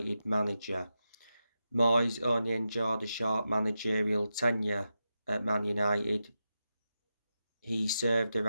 manager. Moyes only enjoyed a short managerial tenure at Man United. He served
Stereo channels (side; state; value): both; inverted; correlation -0.89